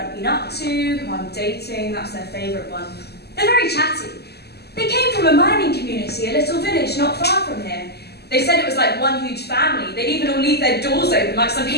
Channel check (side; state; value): right; late; 0.47 ms